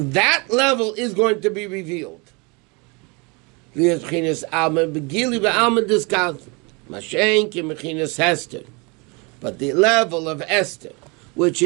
level is going to be revealed. But the level of Esther, which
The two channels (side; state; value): left; quieter; 29.5 dB